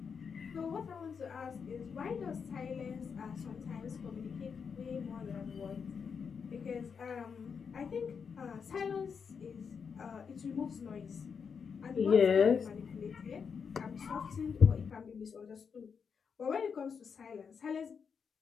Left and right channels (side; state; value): right; quieter; 6.2 dB